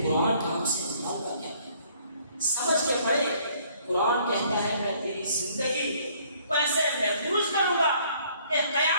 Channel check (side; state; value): both; inverted; correlation -0.61